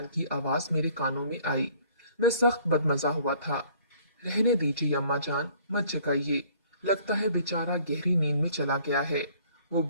की आवाज मेरे कानों में आई। मैं सख्त बदमजा हुआ था। रहने दीजिए अम्मा जान, मत जगाइए। लगता है बेचारा गहरी नींद में चला गया है। वो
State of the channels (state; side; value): inverted; both; correlation -0.57